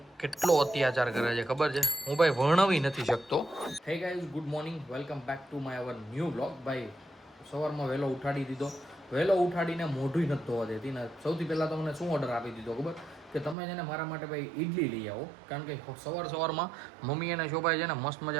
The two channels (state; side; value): drops out; left; at 13.6 s